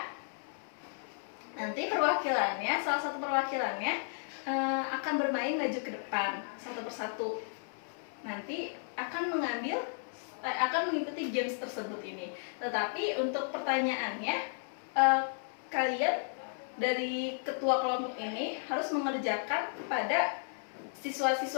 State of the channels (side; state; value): right; silent; 55 dB below the other